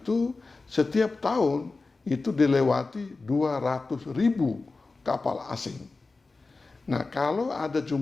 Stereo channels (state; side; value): quieter; right; 3.7 dB